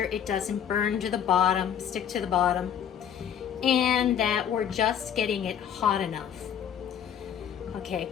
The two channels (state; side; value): quieter; right; 9.1 dB